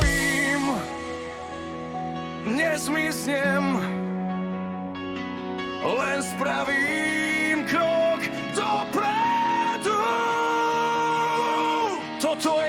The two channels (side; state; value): both; identical; correlation 1.00